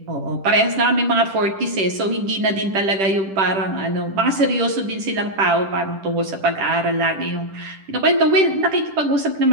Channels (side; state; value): left; late; 10 ms